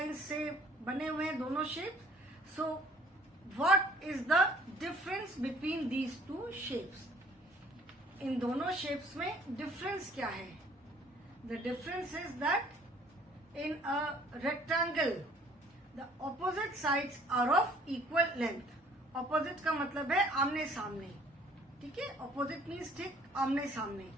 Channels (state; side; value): normal; both; correlation 0.56